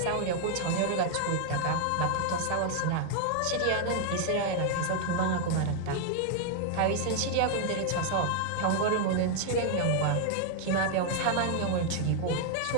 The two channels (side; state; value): both; different; correlation 0.00